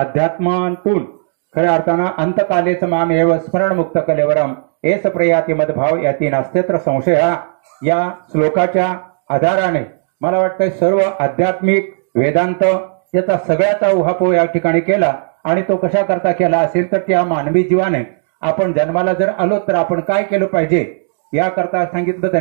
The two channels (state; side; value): silent; left; digital silence